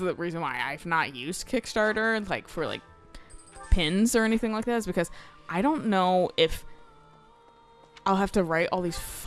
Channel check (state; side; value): identical; both; correlation 1.00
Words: reason why I've not used Kickstarter like for like pins or anything like that, is because I don't know if I'll have to write all these